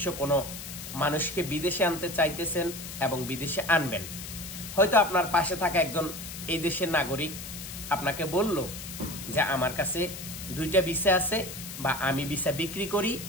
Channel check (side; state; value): left; noise; hiss, 10 dB below the sound